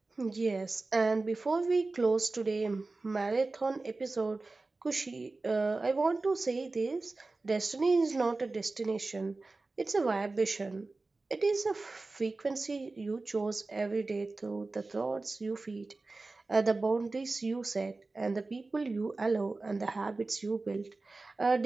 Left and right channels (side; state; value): left; quieter; 3.5 dB